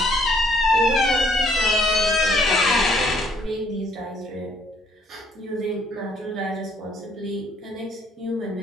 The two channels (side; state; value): both; normal; correlation 0.64